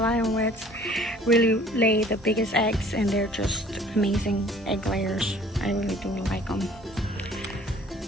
Island Reds really lay the biggest eggs, and they're just amazing egg layers. I really do like them.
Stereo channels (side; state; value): both; normal; correlation 0.53